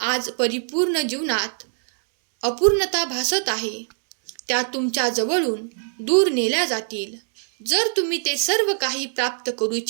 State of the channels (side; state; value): left; silent; digital silence